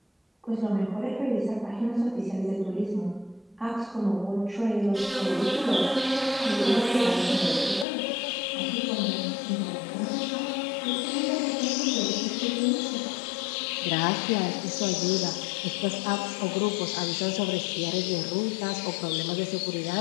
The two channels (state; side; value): drops out; right; at 7.9 s